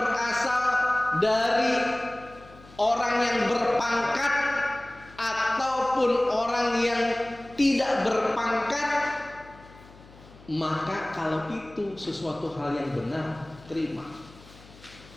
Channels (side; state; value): left; noise; hum, 22 dB below the sound